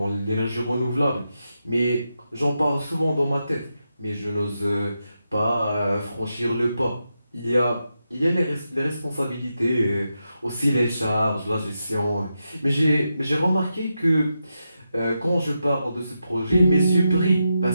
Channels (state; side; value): inverted; both; correlation -0.87